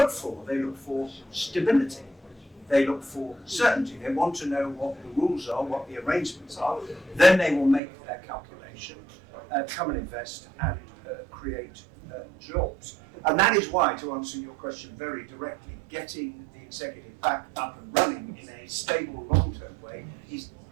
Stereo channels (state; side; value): drops out; left; at 7.8 s